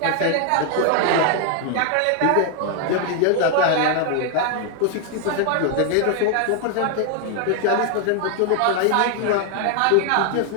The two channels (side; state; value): both; different; correlation 0.00